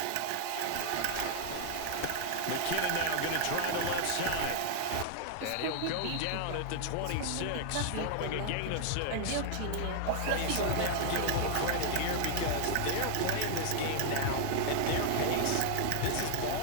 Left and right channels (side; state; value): both; different; correlation 0.00